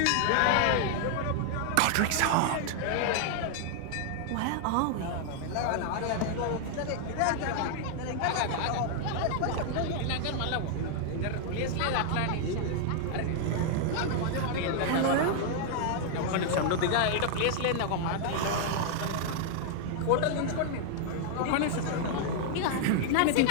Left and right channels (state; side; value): different; both; correlation 0.00